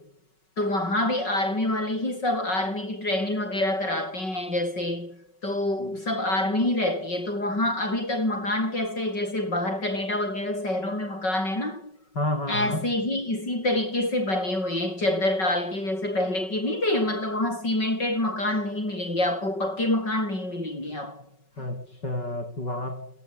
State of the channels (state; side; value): late; right; 5.4 ms